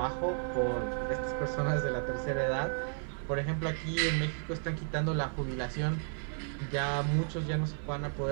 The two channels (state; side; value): silent; left; 56 dB below the other